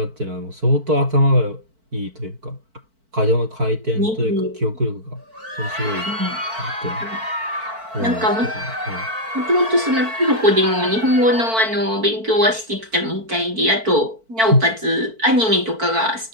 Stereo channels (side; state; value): left; late; 4.5 ms